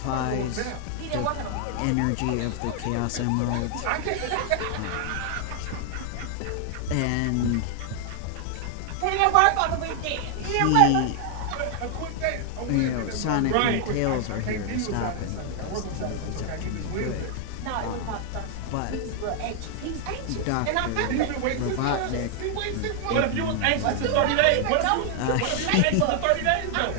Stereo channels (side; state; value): both; different; correlation 0.00